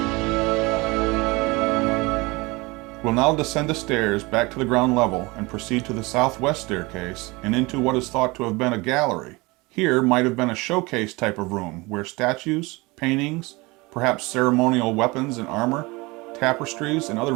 We'll now descend the stairs back to the ground level and proceed to the southwest staircase and into what is thought to have been a gallery. Here might have been a showcase type of room where statues, paintings, perhaps ceremonial weapons and armor, tapestries, and other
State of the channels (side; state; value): left; quieter; 24.0 dB